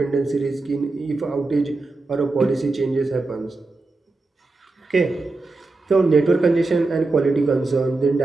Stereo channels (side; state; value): left; quieter; 3.4 dB